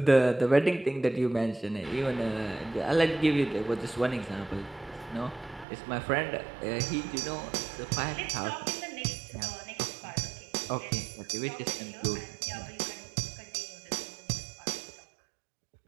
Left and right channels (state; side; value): drops out; left; at 5.7 s